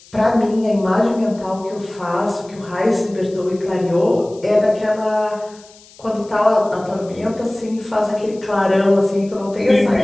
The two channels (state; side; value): noise; left; hiss, 25 dB below the sound